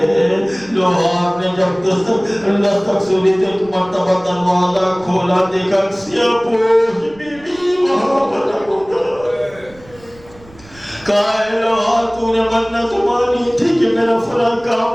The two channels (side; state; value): right; noise; rumble, 24 dB below the sound